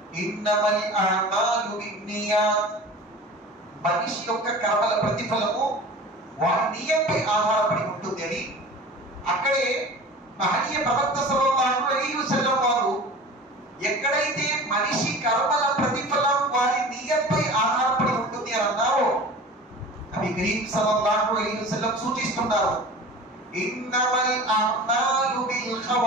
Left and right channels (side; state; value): both; normal; correlation 0.39